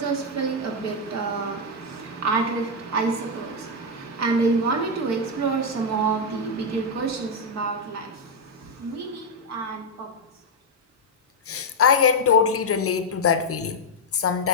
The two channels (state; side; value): normal; both; correlation 0.00